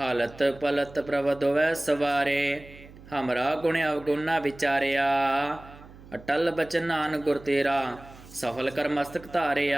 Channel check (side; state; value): right; noise; hum, 20 dB below the sound